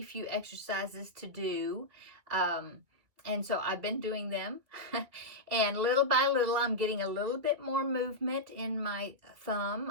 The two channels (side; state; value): left; late; 2.3 ms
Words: a few exercises to do. And so I've been doing them. And little by little, I'm getting a little bit more movement in my